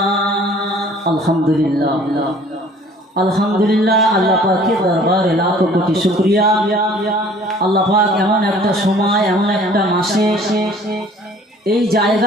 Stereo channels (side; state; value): both; normal; correlation 0.52